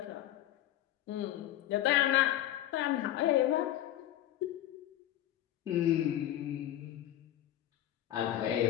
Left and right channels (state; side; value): quieter; right; 13.0 dB